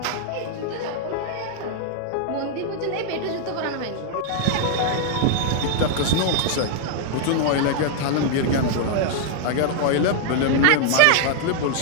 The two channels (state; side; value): different; both; correlation 0.00